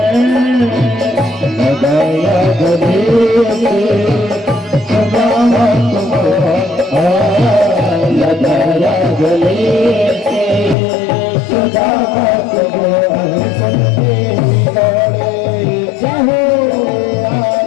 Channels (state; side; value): drops out; right; at 10.8 s